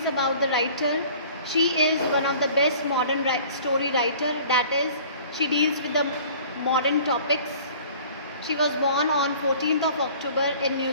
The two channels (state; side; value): inverted; both; correlation -0.48